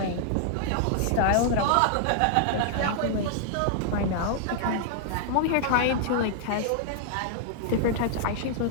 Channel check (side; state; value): both; different; correlation -0.01